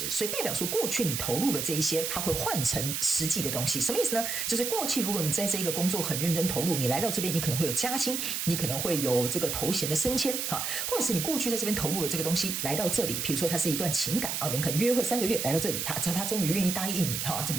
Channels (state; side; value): noise; right; hiss, 2 dB below the sound